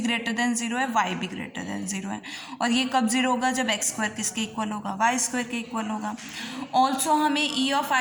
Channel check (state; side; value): identical; both; correlation 1.00